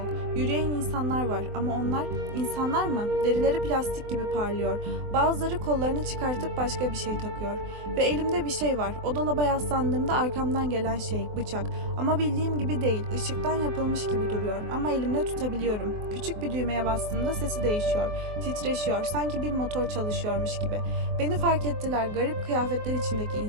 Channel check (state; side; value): late; left; 24 ms